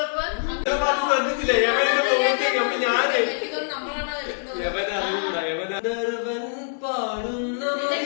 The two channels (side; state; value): right; silent; digital silence